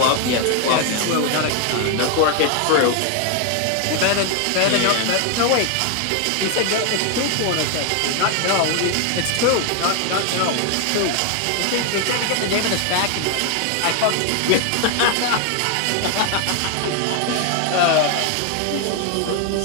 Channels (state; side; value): different; both; correlation 0.01